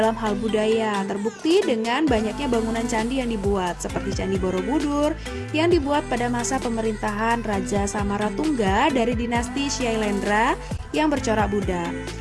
hal budaya, terbukti dengan banyaknya bangunan candi yang dibuat, seperti Candi Borobudur yang dibuat pada masa pemerintahan Raja Samaratungga dari dinasti Syailendra yang bercorak Buddha.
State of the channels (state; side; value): identical; both; correlation 1.00